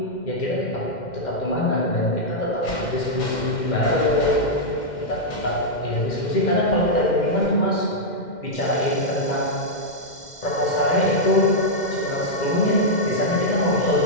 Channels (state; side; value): late; right; 2.1 ms